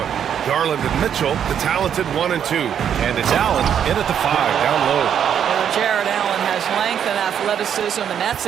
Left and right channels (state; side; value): quieter; left; 8.7 dB